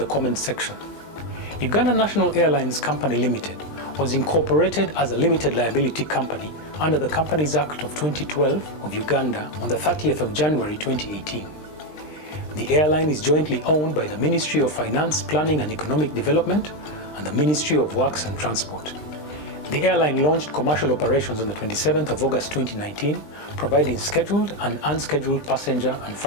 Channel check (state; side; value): late; right; 20 ms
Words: comments section. Uganda National Airlines Company Limited was incorporated as a limited liability company under the Companies Act of 2012 of Uganda on the 30th of January 2018. The airline is jointly owned by the Ministry of Finance, Planning and Economic Development and the Ministry of Works and Transport. The airline launched commercial operations on the 27th of August 2019, providing scheduled and unscheduled passenger and